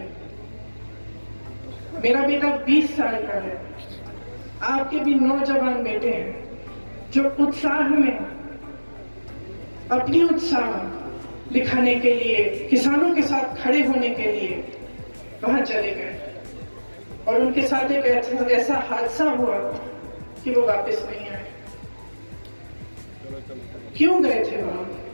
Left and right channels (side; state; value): both; inverted; correlation -1.00